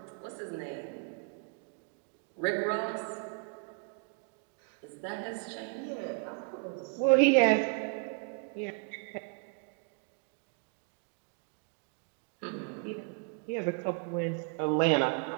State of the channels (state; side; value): quieter; left; 36.9 dB